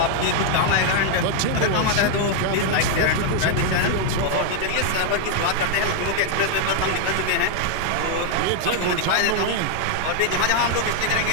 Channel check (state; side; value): different; both; correlation 0.00